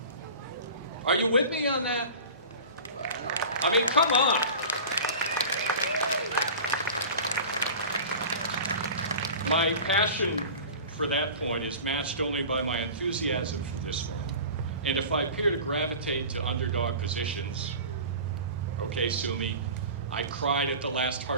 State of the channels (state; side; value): inverted; both; correlation -0.36